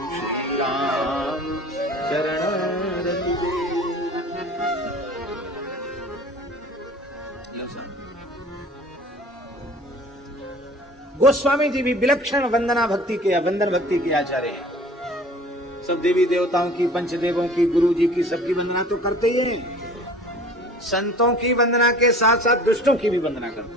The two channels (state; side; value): normal; both; correlation 0.45